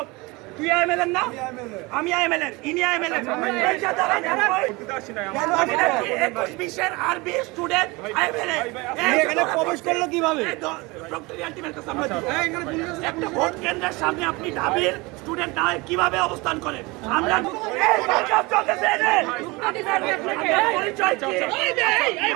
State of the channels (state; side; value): quieter; left; 24.4 dB